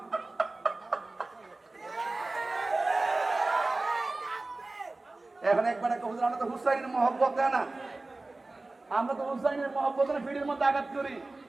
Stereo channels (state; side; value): quieter; left; 3.1 dB